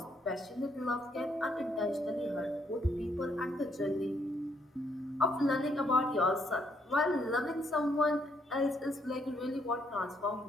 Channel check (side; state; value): both; normal; correlation 0.72